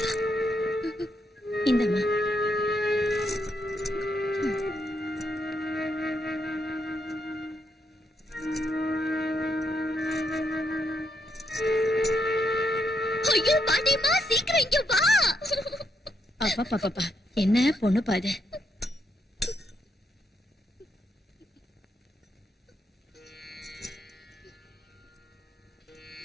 இந்தம்மா. ஐயோ பாட்டிமா, சீக்கிரம் இங்க வா. அப்பா பாப்பா, என்ன பொண்ணு பாது.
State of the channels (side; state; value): both; normal; correlation 0.78